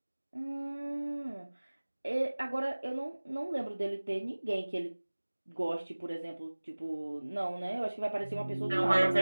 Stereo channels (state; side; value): inverted; both; correlation -1.00